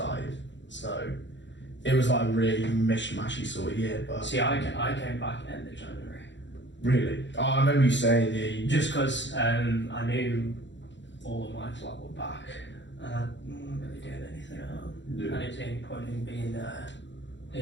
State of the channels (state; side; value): late; right; 0.53 ms